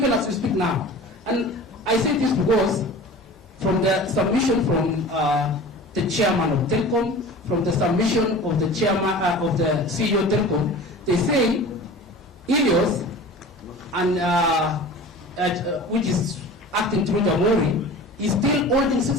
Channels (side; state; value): both; normal; correlation 0.39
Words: as we speak now. And I say this because from the submission from the chairman of Telkom, from the submission of the chairman of the CEO of Telkom, they say Ilios and which is acting through the Jamhuri is still holding